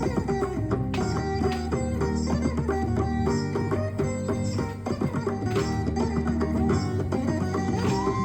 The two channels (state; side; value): noise; left; rumble, 28 dB below the sound